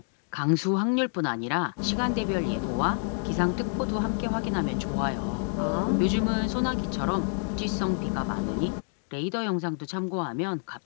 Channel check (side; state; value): right; silent; 59 dB below the other